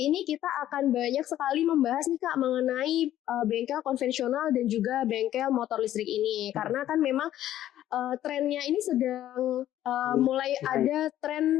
ini kita akan banyak sekali membahas nih Kak mengenai bengkel konvensional dan juga bengkel motor listrik ini. Karena kan memang trennya ini sedang mulai ada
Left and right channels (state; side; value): quieter; right; 12.6 dB